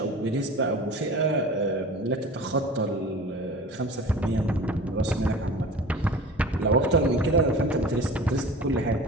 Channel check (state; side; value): normal; both; correlation 0.39